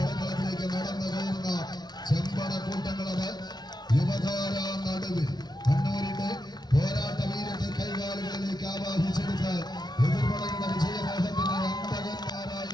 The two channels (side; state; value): right; late; 0.20 ms